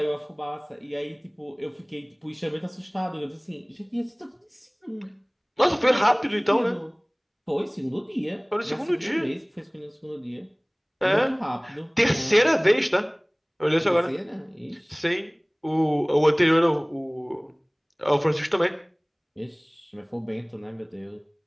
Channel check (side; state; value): both; identical; correlation 1.00